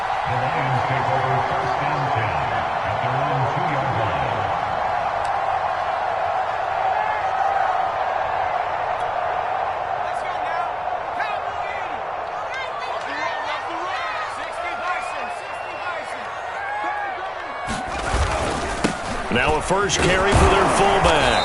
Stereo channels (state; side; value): identical; both; correlation 1.00